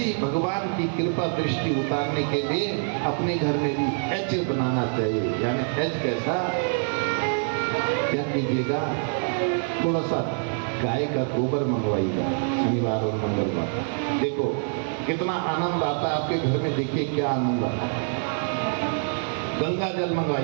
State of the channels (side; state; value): left; silent; 58 dB below the other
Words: भगवान की कृपा दृष्टि उतारने के लिए अपने घर में भी एच बनाना चाहिए। यानी एच कैसा, क्या कीजिएगा, थोड़ा सा गाय का गोबर मंगवाइएगा शनिवार और मंगलवार। देखो कितना आनंद आता है आपके घर में, देखिए क्या आनंद आता है। गंगा जल